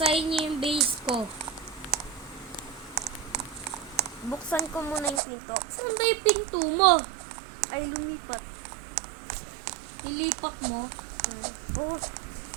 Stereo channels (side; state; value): left; drops out; at 5.2 s